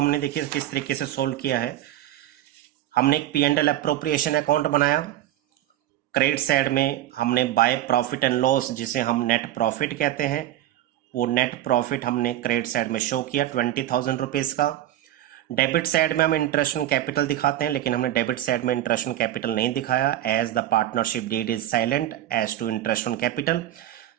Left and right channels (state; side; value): quieter; left; 13.2 dB